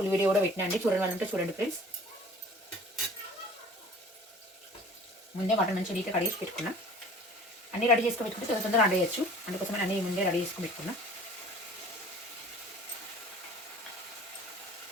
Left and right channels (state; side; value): normal; both; correlation 0.47